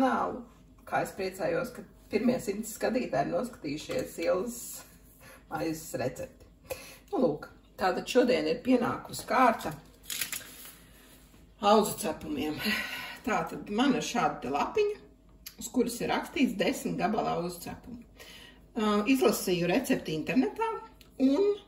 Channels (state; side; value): identical; both; correlation 1.00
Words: kā es priecājos, ka pirmie 100 skatītāji ir noskatījušies Ilzas maizes recepti. Nu, lūk, tātad šodien ir pienākusi kārta auzu cepumiem. Tātad man ir šāda te lapiņa, uz kuras ir rakstīts 10 gabala auzu cepumu. Izlasīju recepti internetā un